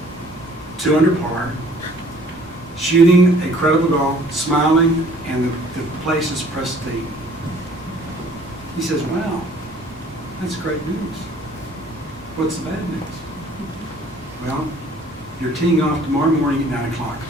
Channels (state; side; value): normal; both; correlation 0.55